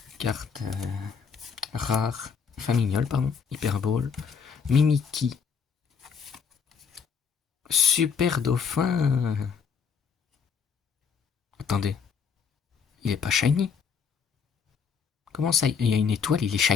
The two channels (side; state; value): right; quieter; 6.3 dB